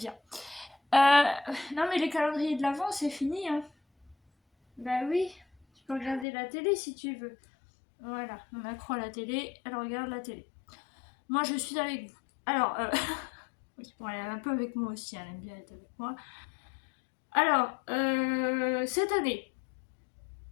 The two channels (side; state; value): right; drops out; at 6.2 s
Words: Euh, non mais les calendriers de l'avant c'est fini, hein. Bah oui, tu peux regarder la télé si tu veux. Voilà, on accro à la télé, elle regarde la télé. Moi, je suis avec vous. Alors, oui, bon, elle est un peu avec moi aussi, elle aime bien être avec moi. Alors, cette année,